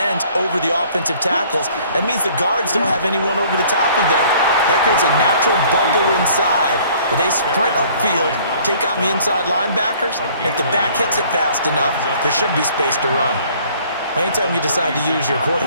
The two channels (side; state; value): both; inverted; correlation -0.56